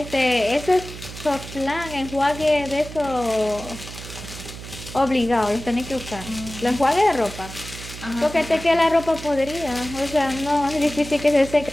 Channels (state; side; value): noise; right; hum, 12 dB below the sound